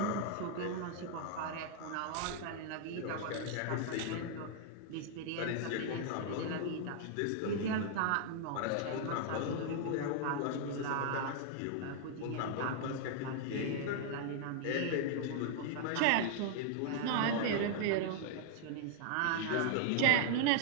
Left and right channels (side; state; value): both; different; correlation -0.01